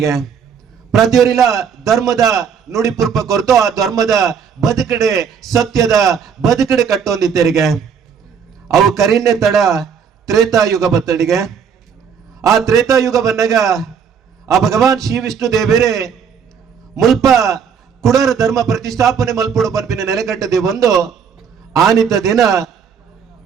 ಪ್ರತಿಯೊರಿಲ ಧರ್ಮದ ನುಡಿ ಪುರ್ಪ ಕೊರತು ಆ ಧರ್ಮದ ಬದುಕಡೆ ಸತ್ಯದ ಬದುಕಡೆ ಕಟ್ಟೊಂದಿದ್ದರಿಗೆ ಅವು ಕರಿನ್ನೆ ತಡ ತ್ರೇತಾಯುಗ ಬತ್ತಡಿಗೆ ಆ ತ್ರೇತಾಯುಗ ಬಂದಾಗ ಆ ಭಗವಾನ್ ಶ್ರೀ ವಿಷ್ಣು ದೇವರೇ ಮುಲ್ಪ ಕುಡರ ಧರ್ಮ ಪ್ರತಿಷ್ಠಾಪನೆ ಮಲ್ಪುಡು ಪಂಪಿನ ನೆಲೆಗಟ್ಟದೆ ಒಂದು ಆನಿತ ದಿನ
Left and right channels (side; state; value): left; quieter; 7.0 dB